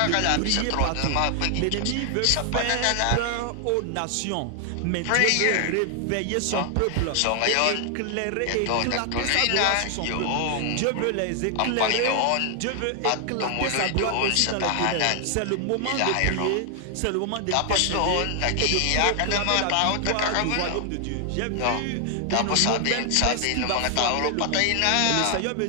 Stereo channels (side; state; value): both; different; correlation 0.00